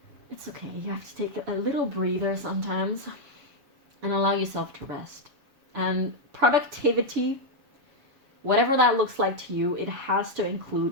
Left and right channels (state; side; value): late; left; 6.9 ms